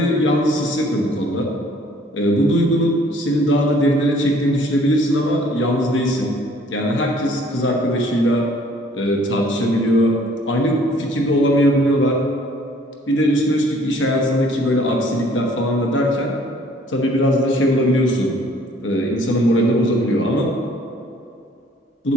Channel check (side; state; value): both; normal; correlation 0.58